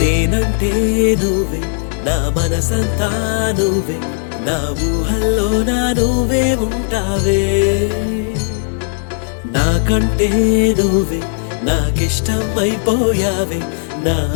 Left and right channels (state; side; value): silent; right; digital silence